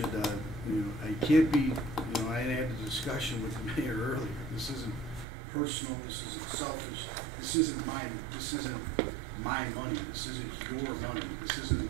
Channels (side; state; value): left; drops out; at 5.2 s